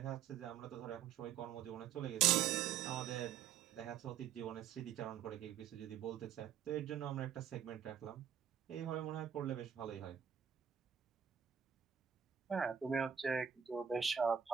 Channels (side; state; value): left; quieter; 8.7 dB